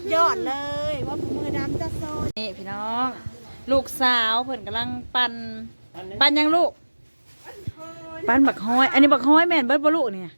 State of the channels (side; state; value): both; inverted; correlation -1.00